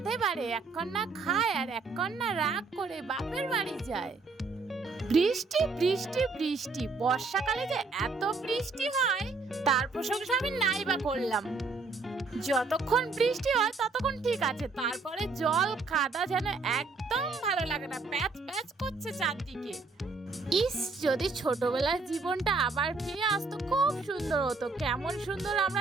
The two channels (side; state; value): left; quieter; 4.0 dB